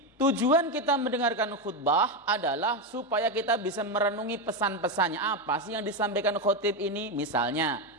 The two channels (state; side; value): normal; both; correlation 0.10